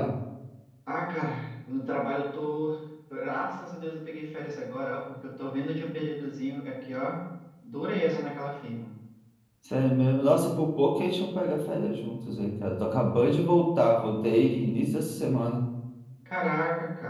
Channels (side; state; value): both; identical; correlation 1.00